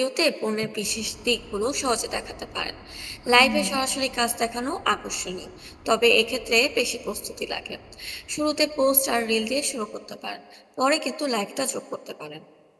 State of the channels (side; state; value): both; identical; correlation 1.00